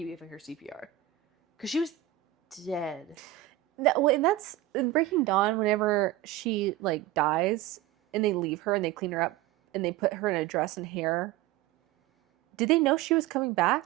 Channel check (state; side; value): quieter; left; 14.2 dB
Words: giving her CPR. Because she was dead. And that's in Breaking Dawn, whenever she like dies and they leave her and they clean her up and they put her in a dress and hair. Did they know she was coming back?